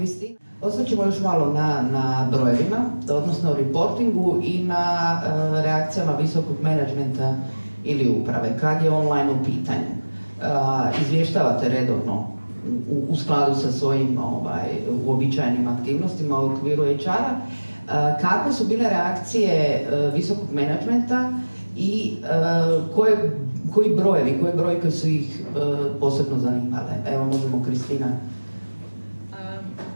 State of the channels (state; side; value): inverted; both; correlation -1.00